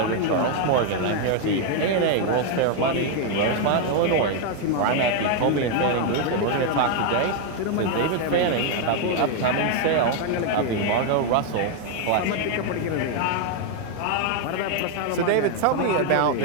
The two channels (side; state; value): both; different; correlation 0.00